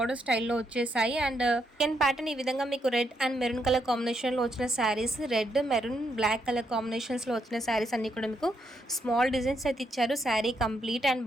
స్టైల్లో వచ్చేసాయి. అండ్ సెకండ్ ప్యాటర్న్ ఈ విధంగా మీకు రెడ్ అండ్ మెరూన్ కలర్ కాంబినేషన్లో వచ్చిన saris, red maroon black colour కాంబినేషన్స్లో వచ్చిన శారీస్ అన్నీ కూడా మీకు స్మాల్ డిజైన్స్ అయితే ఇచ్చారు. శారీ కంప్లీట్ అండ్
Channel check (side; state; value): both; normal; correlation 0.77